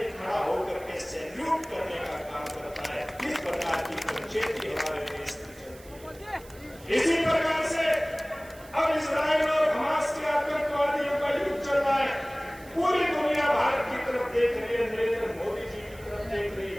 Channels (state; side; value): noise; right; hiss, 22 dB below the sound